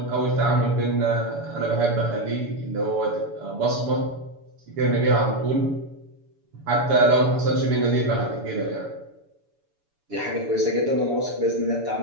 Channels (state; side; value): late; left; 7.0 ms